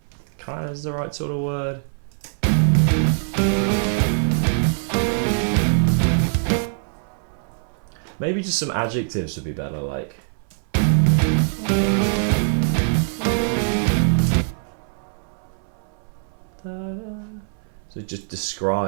Kind of is the right sort of word. Maybe just some adjectives would be better, like. So just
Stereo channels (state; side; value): silent; left; 63 dB below the other